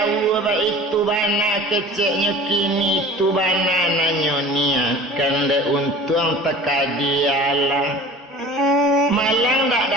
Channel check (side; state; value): both; normal; correlation 0.41